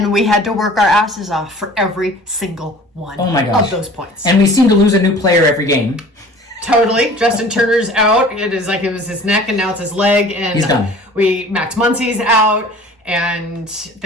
we had to work our asses off for every single one of those points. And we seem to lose a new player every game. Totally. Justin Turner's out. It was his neck, and now it's his leg. And he's done. Max Muncy's out. And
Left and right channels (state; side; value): normal; both; correlation 0.46